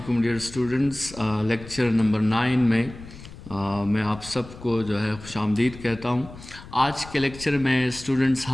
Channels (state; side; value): noise; left; rumble, 16 dB below the sound